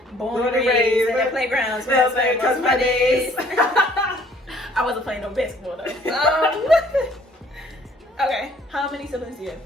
Born and raised at the playgrounds, where I spent most of my days. I wasn't playing no basketball though. Okay, how many siblings do you have?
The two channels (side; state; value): both; normal; correlation 0.59